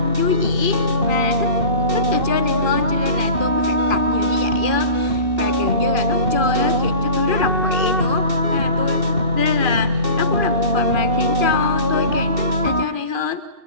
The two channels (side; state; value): left; late; 2.4 ms